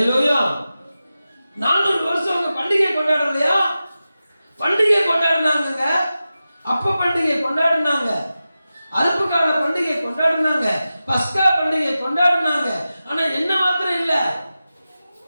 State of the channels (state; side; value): inverted; both; correlation -0.93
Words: 400 வருஷம் அவங்க பண்டிகை கொண்டாடலையா? பண்டிகை கொண்டாடினாங்க. அப்ப பண்டிகை கொண்டாடினாங்க, அறுப்பு கால பண்டிகை கொண்டாடினாங்க, பஸ்கா பண்டிகை கொண்டாடினாங்க. ஆனா என்ன மாத்திரம் இல்ல,